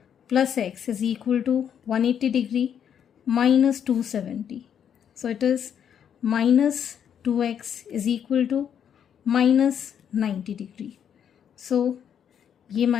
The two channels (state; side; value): quieter; right; 8.5 dB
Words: plus x is equal to 180 degree minus 270, so it is minus 2x is equal to minus 90 degree. So ये